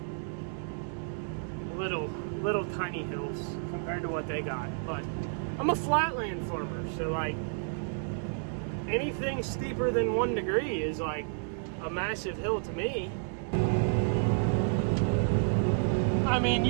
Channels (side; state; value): left; silent; 57 dB below the other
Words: little tiny hills compared to what they got. But I'm a flatland farmer, so like anything steeper than 1 degree is like a massive hill to me. I mean,